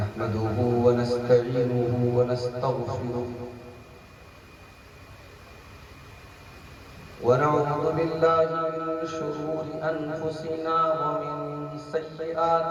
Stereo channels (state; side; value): identical; both; correlation 1.00